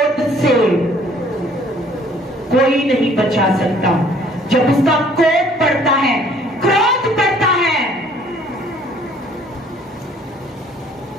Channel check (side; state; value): both; normal; correlation 0.58